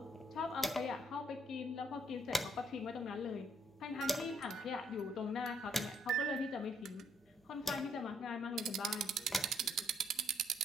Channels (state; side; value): normal; both; correlation 0.70